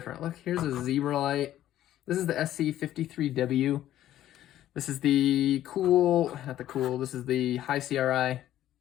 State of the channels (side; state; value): right; quieter; 12.7 dB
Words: Look, here's a zebra light. This is the SC53W. This is the this is the high CRI